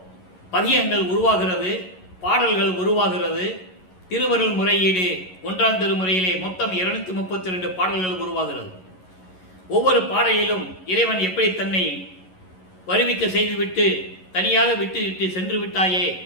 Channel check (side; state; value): right; late; 11 ms